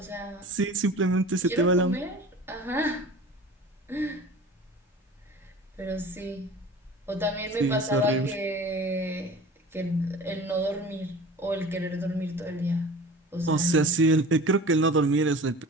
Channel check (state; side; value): normal; both; correlation 0.40